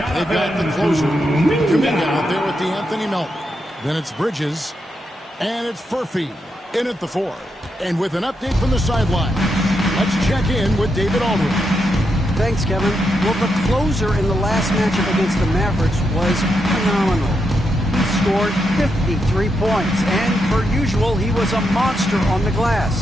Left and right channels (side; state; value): both; normal; correlation 0.83